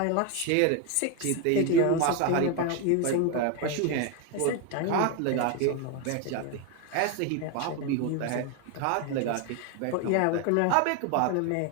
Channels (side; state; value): both; different; correlation 0.02